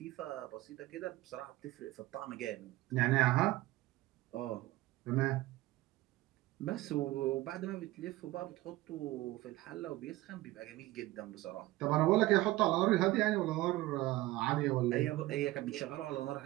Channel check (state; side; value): quieter; left; 18.0 dB